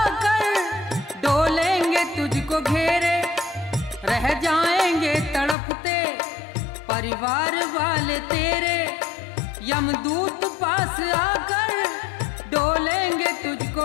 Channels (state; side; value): drops out; right; at 5.6 s